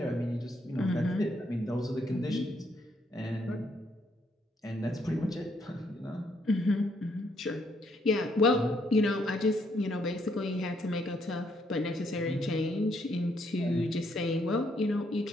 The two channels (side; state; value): both; normal; correlation 0.72